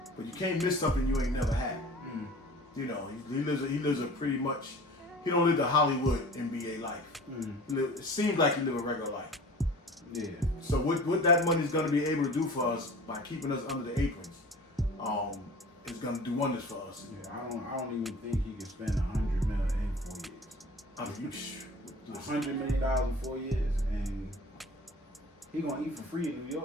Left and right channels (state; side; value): normal; both; correlation 0.42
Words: But you can't miss something you ain't never had. You know, he lives a pretty much. He don't live the Hollywood NBA life. It seems like he live a regular life. Yeah. So what that money is going to be able to do for us by keeping us under the aprons, is going to do wonders for us. Yeah, I don't even think he can spend $100 million in 4 years. I mean, $100 million in 4 years, and he gonna eat for free in New